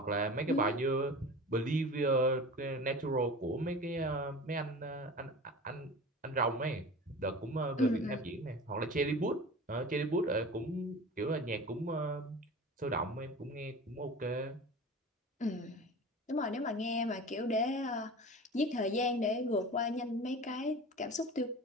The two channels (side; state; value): both; normal; correlation 0.35